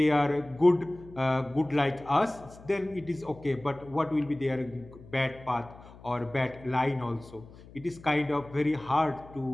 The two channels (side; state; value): left; noise; hum, 20 dB below the sound